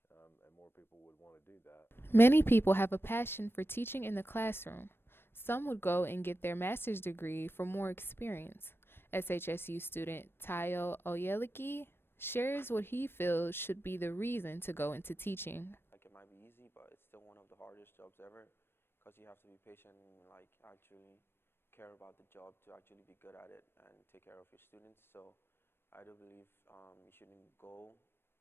And more people would want to do that. Many people have a passion for teaching in the classroom. Some would go and get their master's degree for more experience. SHSU student Tayo Oyeliki shares what he feels should be the reason to go into teaching. It might be easy, but it's still one of the hardest jobs ever because you have to be patient and actually care about the job to actually be good at it and take care of your students. So I do believe you shouldn't go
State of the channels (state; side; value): late; right; 0.11 ms